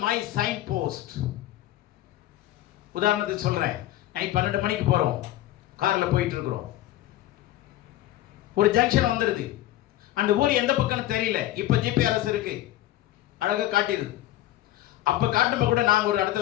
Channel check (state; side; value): quieter; right; 14.5 dB